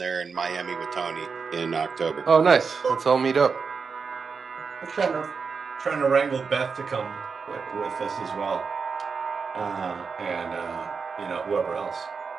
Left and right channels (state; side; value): quieter; left; 5.3 dB